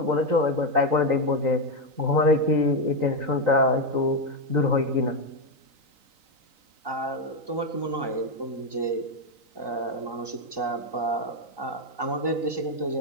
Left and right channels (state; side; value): late; left; 3.9 ms